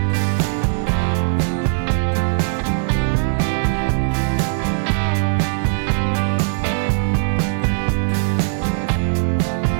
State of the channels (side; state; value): left; silent; 56 dB below the other